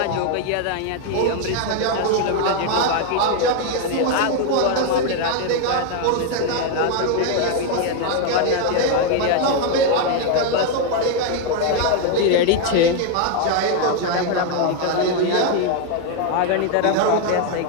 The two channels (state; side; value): different; both; correlation 0.01